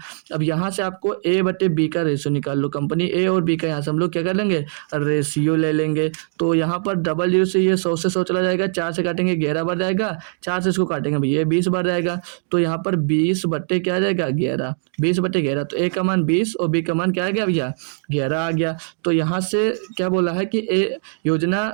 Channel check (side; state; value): left; silent; digital silence